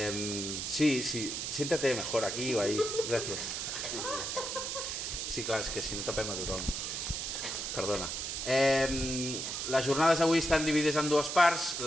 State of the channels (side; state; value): right; noise; hiss, 3 dB below the sound